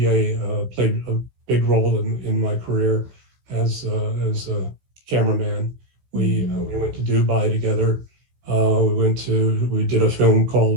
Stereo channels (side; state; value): left; late; 16 ms